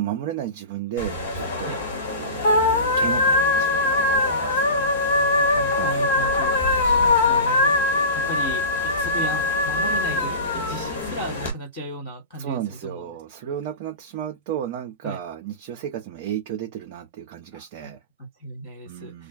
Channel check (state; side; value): inverted; both; correlation -0.31